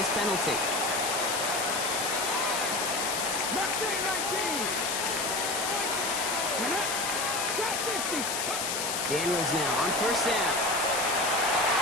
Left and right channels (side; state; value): left; noise; hiss, 1 dB below the sound